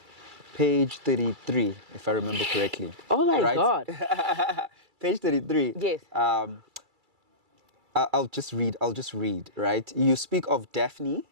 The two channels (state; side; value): late; left; 2.3 ms